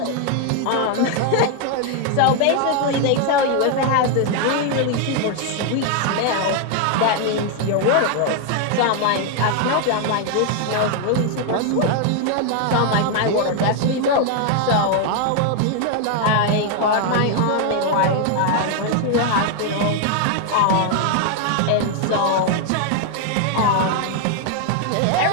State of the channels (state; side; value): different; both; correlation 0.00